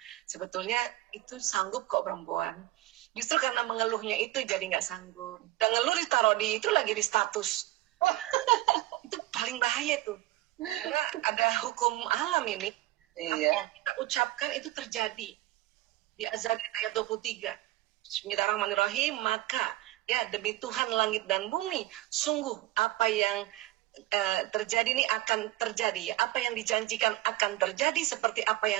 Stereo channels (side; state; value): left; quieter; 16.9 dB